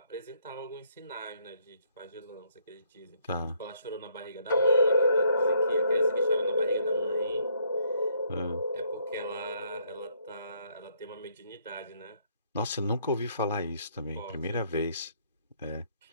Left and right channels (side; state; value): both; inverted; correlation -0.68